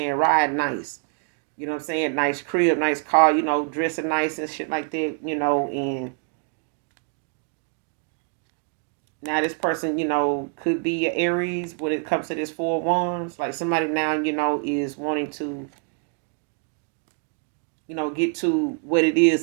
Riding nice. You know what I'm saying? Nice crib, nice car, dressing nice and shit like that, and now this person, could be an Aries when it comes to this Four of Wands. Like somebody now, is wanting to get to what it is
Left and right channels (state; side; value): quieter; left; 35.5 dB